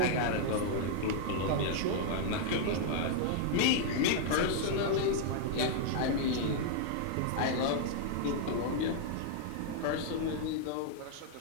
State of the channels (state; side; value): different; both; correlation -0.01